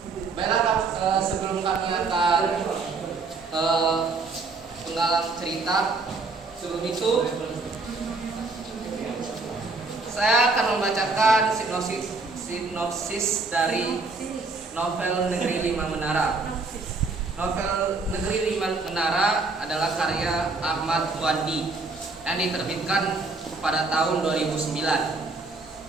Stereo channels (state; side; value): quieter; left; 3.9 dB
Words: Baiklah, sebelum kami akan penggalang cerita, sebelum itu saya akan membacakan sinopsis dari novel Negeri Lima Menara. Novel Negeri Lima Menara adalah karya Ahmad Wandi yang diterbitkan pada tahun 2009.